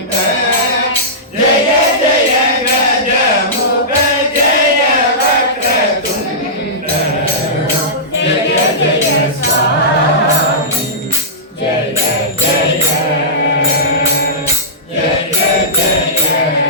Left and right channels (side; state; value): both; normal; correlation -0.16